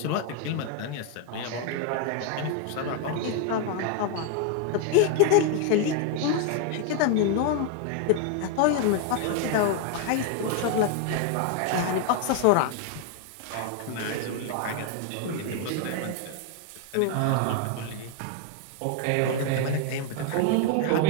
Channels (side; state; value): both; different; correlation 0.01